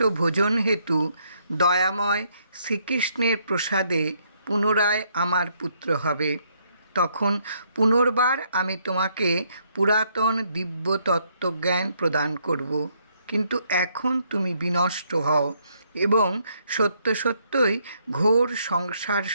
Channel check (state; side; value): inverted; both; correlation -0.71